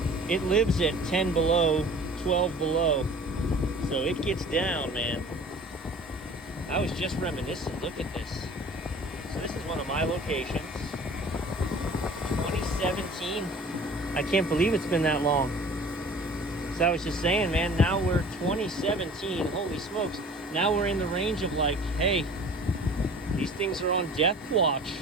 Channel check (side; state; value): both; normal; correlation 0.46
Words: It lives at 10 below, 12 below. So it gets down, man. I was just reminiscing. Look at this. So this is one of my locations. 2017. I can't believe it's been that long. So I was just saying, man, now we're 2017. Holy smokes. Now we're in the range of like, hey, these things are on death watch.